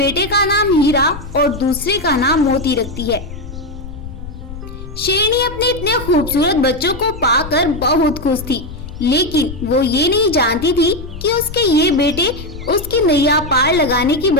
का नाम हीरा और दूसरे का नाम मोती रखती है। शेरनी अपने इतने खूबसूरत बच्चों को पाकर बहुत खुश थी, लेकिन वो ये नहीं जानती थी कि उसके ये बेटे उसकी नैया पार लगाने की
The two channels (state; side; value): noise; left; rumble, 12 dB below the sound